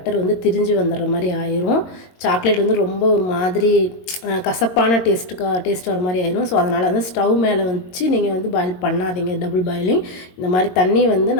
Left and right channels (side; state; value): right; late; 22 ms